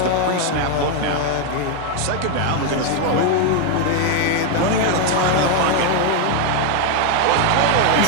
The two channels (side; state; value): both; different; correlation 0.01